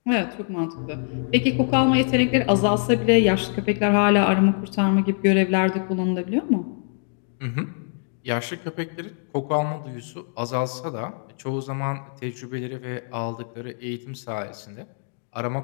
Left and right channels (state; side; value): silent; right; 55 dB below the other